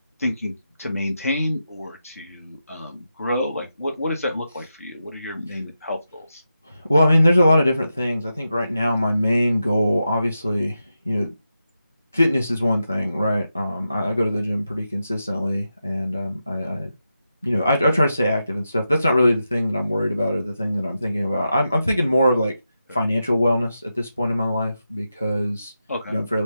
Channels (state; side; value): inverted; both; correlation -0.88